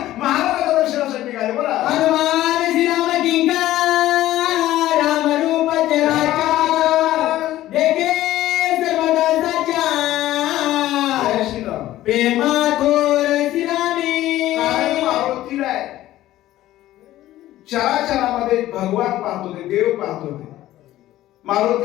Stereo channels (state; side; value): quieter; right; 14.6 dB